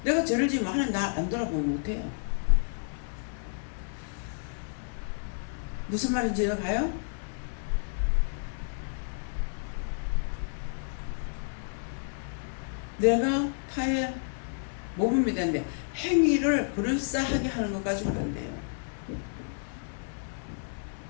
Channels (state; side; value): silent; right; 57 dB below the other